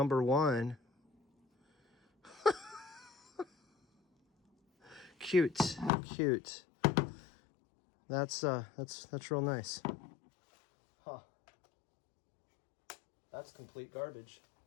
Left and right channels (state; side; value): drops out; right; at 5.9 s